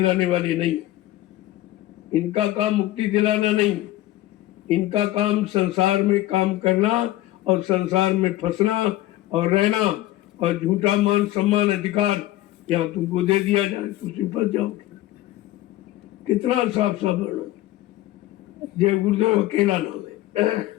वाले नहीं। इनका काम मुक्ति दिलाना नहीं, इनका काम संसार में काम करना और संसार में फंसना और रहना, और झूठा मान सम्मान अधिकार यहाँ तुमको दे दिया जाए तो तुम फंस जाओगे। कितना साफ साफ वर्णन। जय गुरुदेव अकेला नाम है,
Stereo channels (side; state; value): right; quieter; 15.7 dB